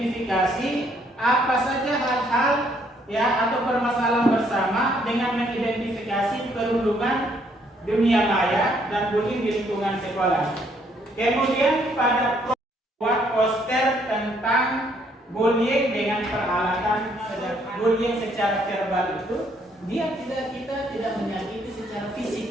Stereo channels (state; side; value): normal; both; correlation 0.68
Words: apa saja hal-hal ya atau permasalahan bersama dengan mengidentifikasi perundungan dunia maya dan bullying di lingkungan sekolah. Kemudian pada buat poster tentang bullying dengan peralatan bullying secara verbal itu kita tidak menyakiti secara